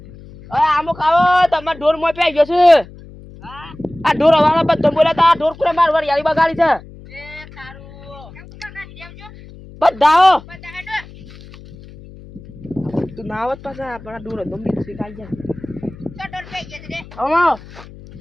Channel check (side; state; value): left; noise; hum, 19 dB below the sound